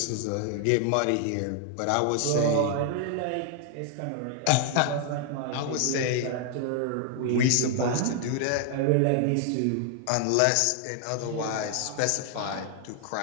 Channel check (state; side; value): different; both; correlation 0.00